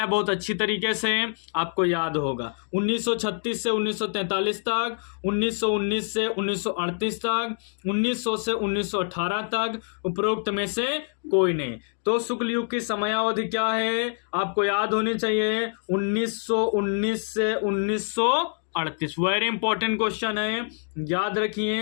बहुत अच्छी तरीके से, आपको याद होगा। 1936 से 1943 तक, 1919 से 1938 तक, 1900 से 1918 तक, उपरोक्त में से कोई नहीं। तो शुक्ल युग की समयावधि क्या है? आपको याद होनी चाहिए, 1919 से 1938। वेरी इंपॉर्टेंट क्वेश्चन है, याद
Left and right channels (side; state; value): right; silent; 61 dB below the other